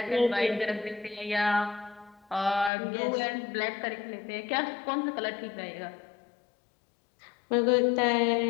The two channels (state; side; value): drops out; right; at 2.7 s